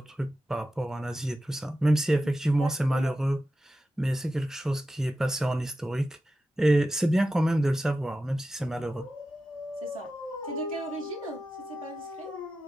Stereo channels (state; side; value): normal; both; correlation 0.92